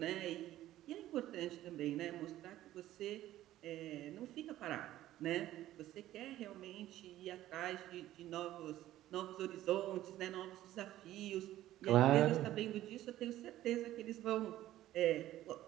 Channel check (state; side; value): quieter; left; 14.1 dB